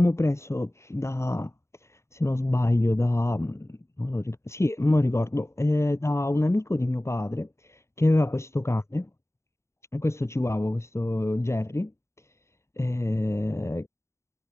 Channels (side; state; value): right; late; 0.14 ms